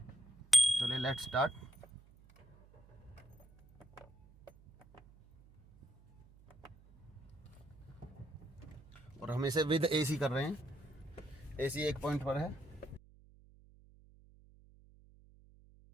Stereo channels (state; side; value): noise; right; hum, 24 dB below the sound